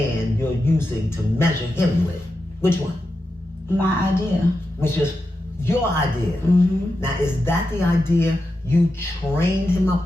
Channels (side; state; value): both; normal; correlation 0.89